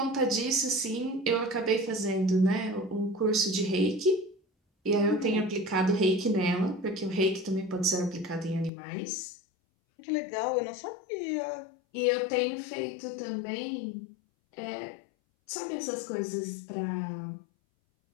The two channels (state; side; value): drops out; right; at 8.7 s